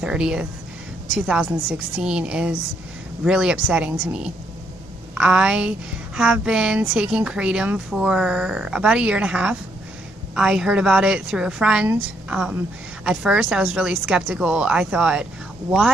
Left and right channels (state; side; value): normal; both; correlation 0.74